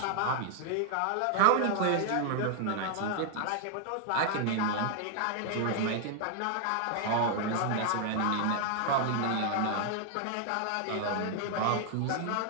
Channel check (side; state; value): both; different; correlation 0.00